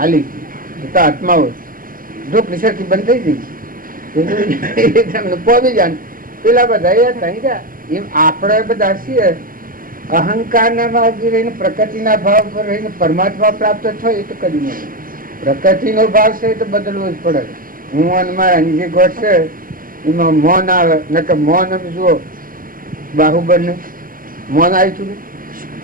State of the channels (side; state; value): left; late; 0.41 ms